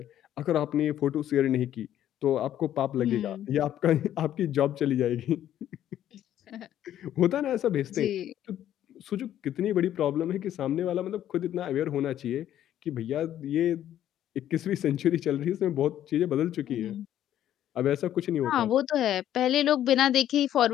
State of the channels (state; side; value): quieter; right; 11.5 dB